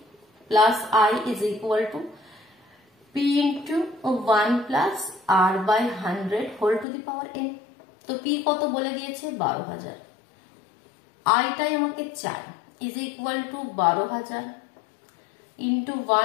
plus I is equal to P into 1 plus R by 100 whole to the power N. তো পি কত বলে দিয়েছে 12,000, আইটাই আমাকে চাই, is equal to 12,000 into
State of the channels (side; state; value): right; drops out; at 6.9 s